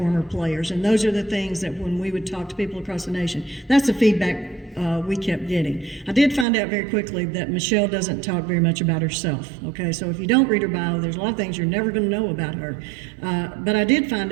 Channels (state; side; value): drops out; left; at 6.5 s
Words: players, and those are the things that when we would talk to people across the nation, that's the feedback we kept getting. I did find out very quickly that Michelle doesn't talk very much about herself, okay? So if you don't read her bio, there's a lot of things you're never going to know about her. But I did find